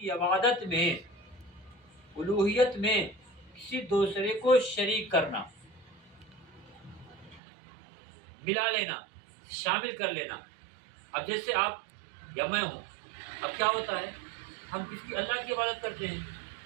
عبادت میں، الوہیت میں کسی دوسرے کو شریک کرنا، ملا لینا، شامل کر لینا۔ اب جیسے آپ یا میں ہوں، اب کیا ہوتا ہے، ہم کس کی؟ اللہ کی عبادت کرتے ہیں،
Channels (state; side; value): drops out; left; at 7.4 s